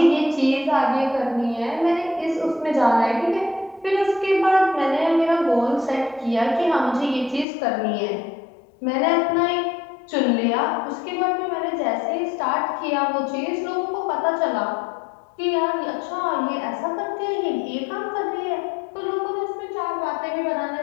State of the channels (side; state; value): right; drops out; at 7.5 s